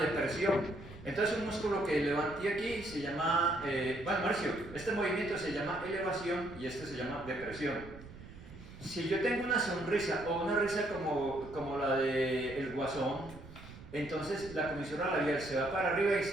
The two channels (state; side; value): noise; right; rumble, 16 dB below the sound